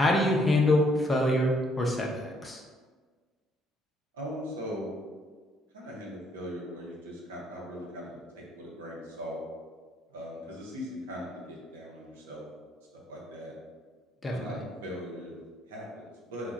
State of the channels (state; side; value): normal; both; correlation 0.69